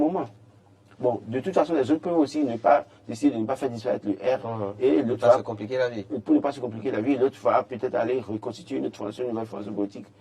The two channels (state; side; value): identical; both; correlation 1.00